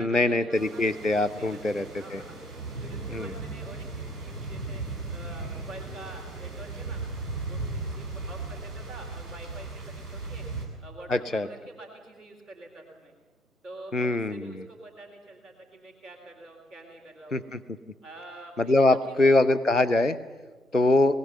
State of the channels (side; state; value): both; normal; correlation 0.70